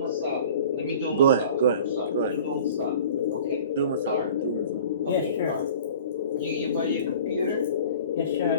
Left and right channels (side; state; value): both; inverted; correlation -0.44